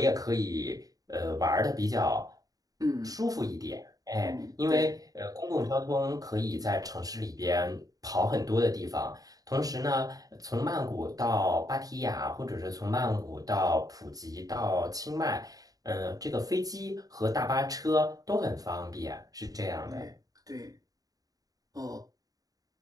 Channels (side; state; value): left; late; 0.18 ms